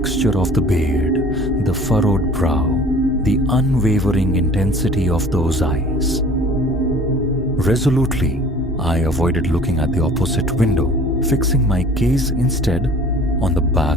of the beard, the furrowed brow, the unwavering intensity of those eyes. Resolutely, I avoided looking at the opposite window, fixing my gaze instead on the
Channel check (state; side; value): normal; both; correlation 0.48